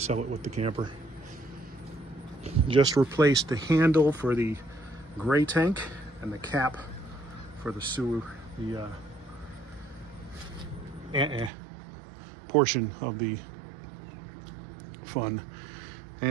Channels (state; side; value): drops out; left; at 11.5 s